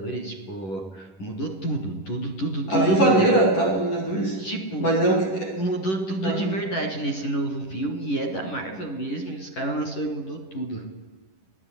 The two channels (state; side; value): late; right; 11 ms